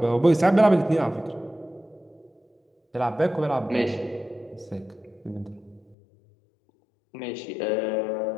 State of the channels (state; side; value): drops out; right; at 6.0 s